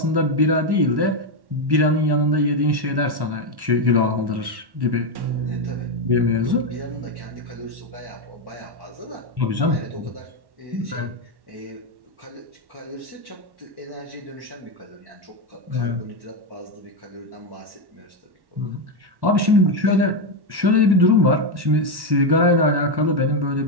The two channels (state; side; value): late; left; 1.1 ms